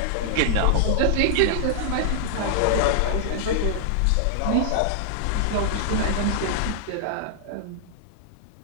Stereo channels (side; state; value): both; different; correlation -0.01